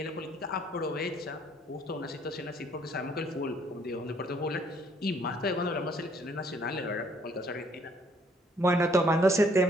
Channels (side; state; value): both; normal; correlation 0.64